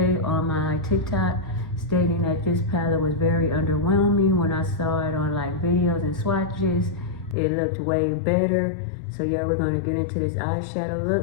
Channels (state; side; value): drops out; right; at 7.4 s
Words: on my TikTok, stating that this palette was very underwhelming. When I saw it on like videos and swatches, it looked way better. So yeah, we're gonna get into this eyeshadow